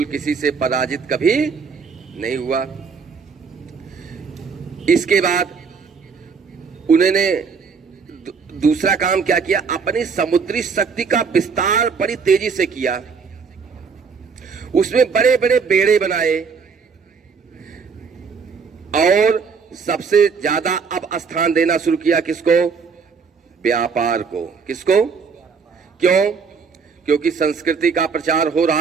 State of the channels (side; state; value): left; quieter; 5.6 dB